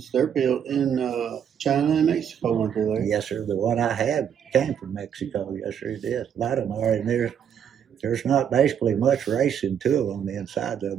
they're built in China and Mexico, aren't they? Yes, sir. The one I had came from Mexico. Yes, sir, it is. A lot of them are, and there's not basically much racing to them on the inside of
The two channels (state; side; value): quieter; left; 8.4 dB